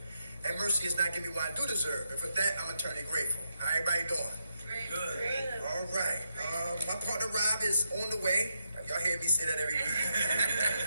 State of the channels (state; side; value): inverted; both; correlation -0.83